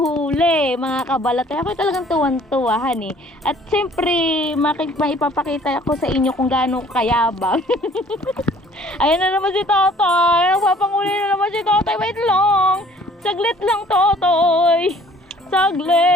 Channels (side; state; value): both; normal; correlation 0.55